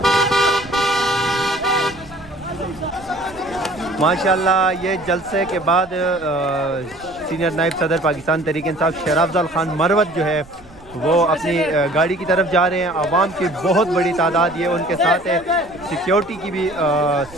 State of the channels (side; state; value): right; noise; rumble, 22 dB below the sound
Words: माशाल्लाह ये जलसे के बाद सीनियर नायब सदर पाकिस्तान तहरीक इंसाफ शेर अफजल खान मरवत जो है वो अपनी गाड़ी की तरफ जा रहे हैं। आवाम की बहुत बड़ी तादाद ये उनके साथ है, सिक्योरिटी की भी